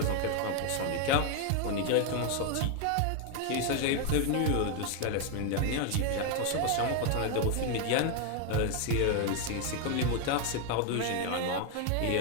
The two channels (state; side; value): different; both; correlation 0.01